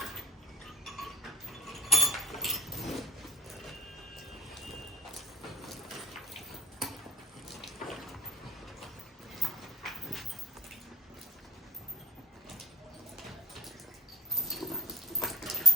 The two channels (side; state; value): both; normal; correlation 0.39